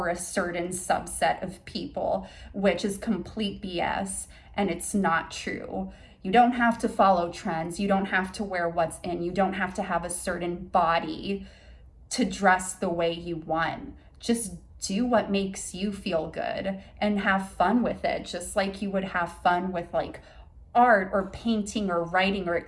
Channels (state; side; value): identical; both; correlation 1.00